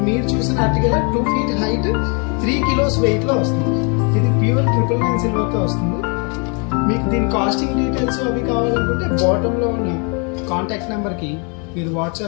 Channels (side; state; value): right; quieter; 35.2 dB